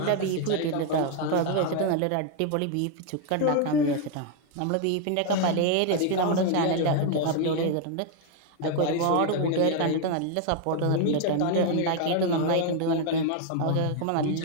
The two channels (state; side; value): different; both; correlation 0.01